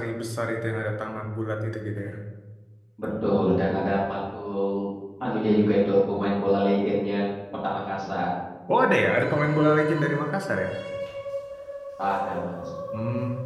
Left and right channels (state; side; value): identical; both; correlation 1.00